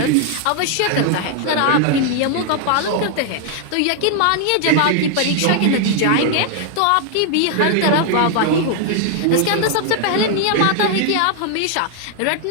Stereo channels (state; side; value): different; both; correlation 0.00